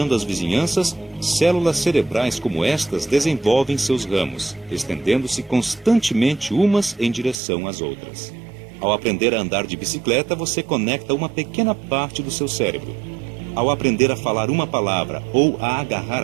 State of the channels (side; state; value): left; drops out; at 7.4 s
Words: as vizinhanças, células cerebrais como estas desenvolvem seus ramos, estendendo-se constantemente umas em direção às outras. Ao aprender a andar de bicicleta, você conecta uma pequena parte do seu cérebro. Ao aprender a falar uma palavra ou a agarrar